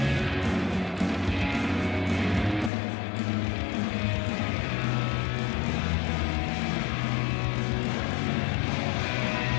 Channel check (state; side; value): drops out; right; at 2.7 s